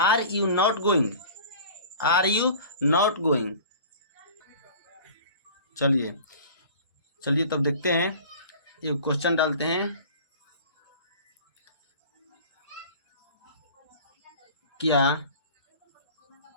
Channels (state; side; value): inverted; both; correlation -0.43